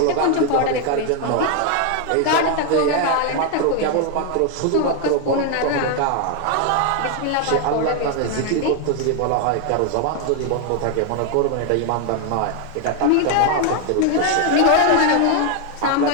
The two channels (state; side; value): different; both; correlation 0.01